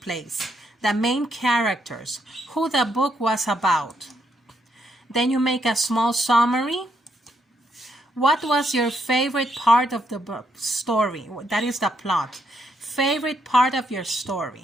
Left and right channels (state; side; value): normal; both; correlation 0.76